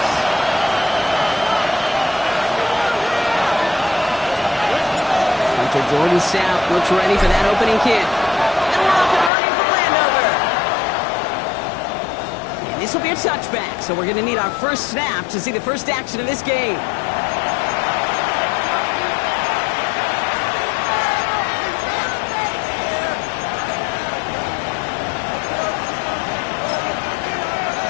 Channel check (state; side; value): drops out; right; at 9.3 s